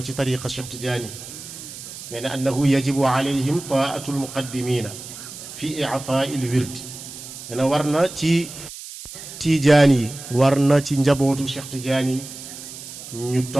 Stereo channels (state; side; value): noise; right; hiss, 13 dB below the sound